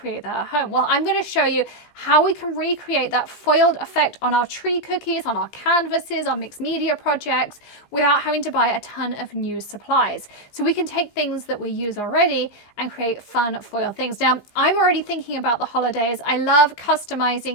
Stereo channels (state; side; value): late; right; 15 ms